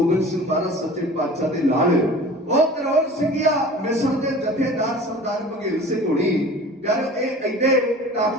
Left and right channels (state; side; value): normal; both; correlation 0.41